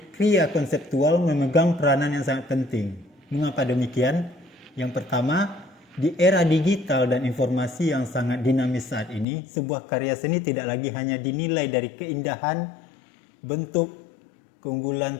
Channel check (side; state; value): right; drops out; at 9.2 s